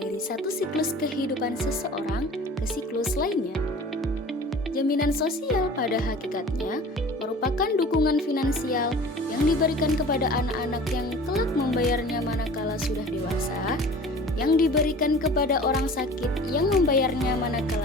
satu siklus kehidupan seseorang ke siklus lainnya. Jaminan sosial pada hakikatnya merupakan dukungan finansial yang diberikan kepada anak-anak yang kelak membayarnya manakala sudah dewasa, yang diberikan kepada orang sakit yang membayarnya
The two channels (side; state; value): both; normal; correlation 0.42